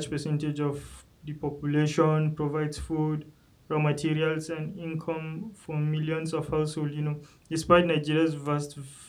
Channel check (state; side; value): identical; both; correlation 1.00